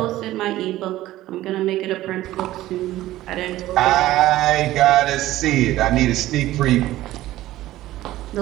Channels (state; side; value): quieter; left; 15.4 dB